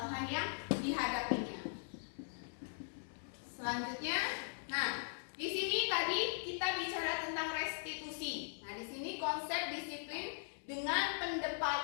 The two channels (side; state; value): right; silent; digital silence